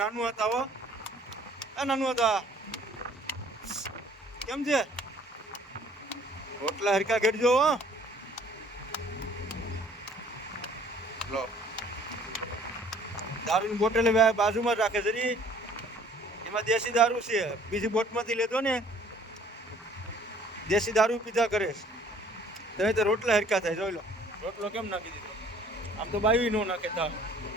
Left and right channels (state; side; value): normal; both; correlation 0.56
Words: હતા હો. આ નાનું હતા કેમ છે? રોટલા હરખા ઘડજો હો. લો દારૂની બોટલ બાજુમાં રાખે જરી. એમાં દેશી દારૂ છે. બીજી બોટમાંથી લેતો ને દેશી દારૂ પીધા કરે. તમે તો રોટલા હરખા થાય. જોઈ લો રોટલો કેમ નાખી દીધો. આમ તો બાવી નો નાખે તા.